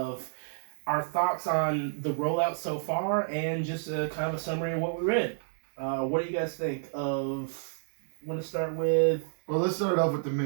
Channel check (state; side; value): silent; left; digital silence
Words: our thoughts on the rollout so far and just a kind of a summary of what we read. What do you guys think of? Want to start with? Well, let's start off with the